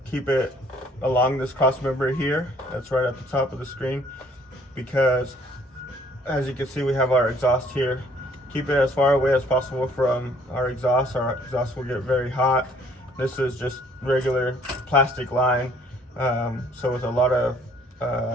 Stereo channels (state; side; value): normal; both; correlation 0.60